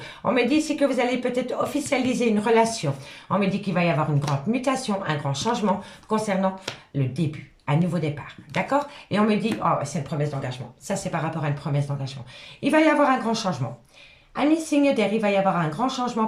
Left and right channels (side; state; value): both; identical; correlation 1.00